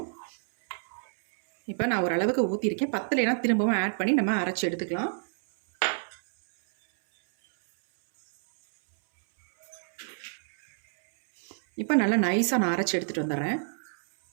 இப்போ நான் ஓரளவுக்கு ஊற்றிருக்கேன். பத்தலைனா திரும்பவும் ஆட் பண்ணி நம்ம அரைச்சி எடுத்துக்கலாம். இப்போ நல்லா நைஸாக நான் அரைச்சி எடுத்துகிட்டு வந்துடுறேன்.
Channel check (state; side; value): silent; left; 60 dB below the other